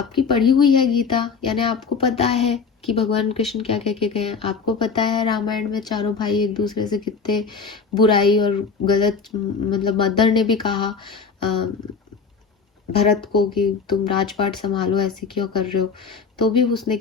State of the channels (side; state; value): right; quieter; 5.3 dB